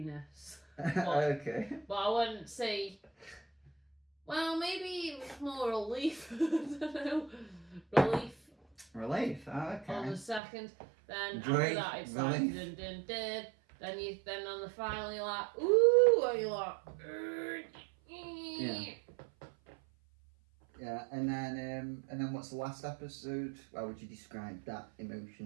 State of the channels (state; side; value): drops out; left; at 10.4 s